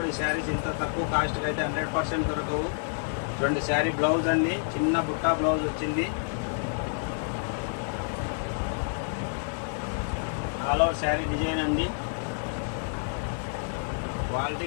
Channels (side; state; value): right; silent; digital silence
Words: ఈ శారీస్ ఇంత తక్కువ కాస్ట్కి అయితే 100% దొరకవు. చూడండి శారీ బ్లౌజ్ అండి, చిన్న బుట్టా బ్లౌజ్ వచ్చింది. ఆల్ ఓవర్ శారీ డిజైన్ అండి.